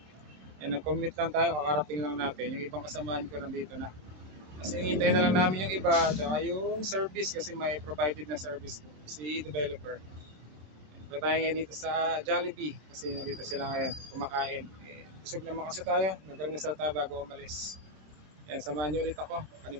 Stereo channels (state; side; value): late; left; 26 ms